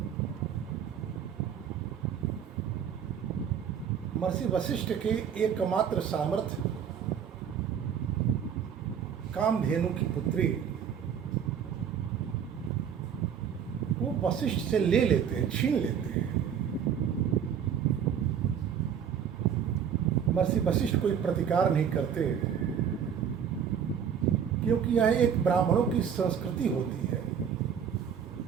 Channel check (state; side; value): quieter; left; 8.1 dB